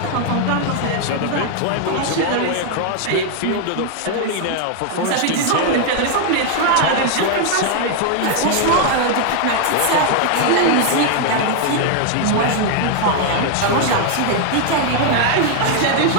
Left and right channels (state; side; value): different; both; correlation 0.00